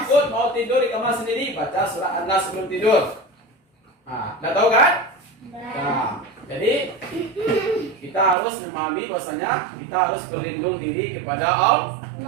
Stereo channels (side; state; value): left; drops out; at 8.3 s